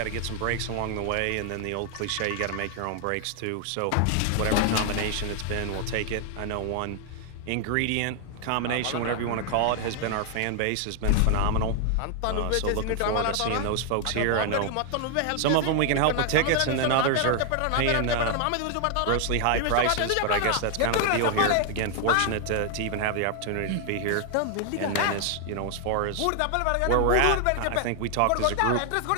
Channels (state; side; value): different; both; correlation 0.00